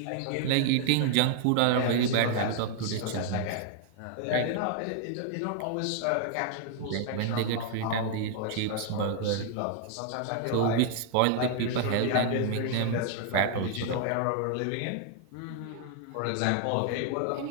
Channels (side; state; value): both; different; correlation 0.00